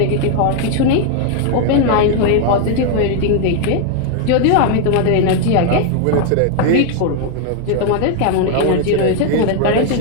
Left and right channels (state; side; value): different; both; correlation 0.00